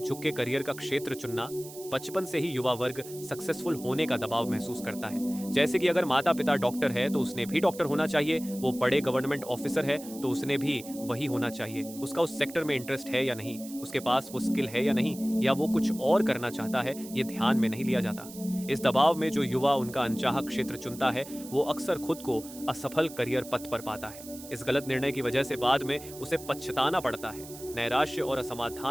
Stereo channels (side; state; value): right; noise; hiss, 15 dB below the sound